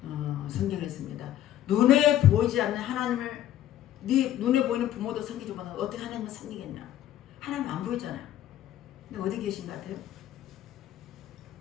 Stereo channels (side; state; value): right; quieter; 12.3 dB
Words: 성경에 있습니다. 눈에 보이지 않는 하나님을 네 눈에 보이는 부모도 섬기지 못하고 어떻게 하나님을 섬기겠냐? 하나님 안 보이잖아요. 근데 어디 계신 것 같아요?